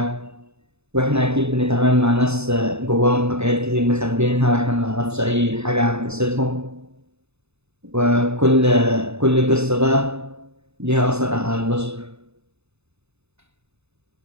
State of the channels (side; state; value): left; late; 0.80 ms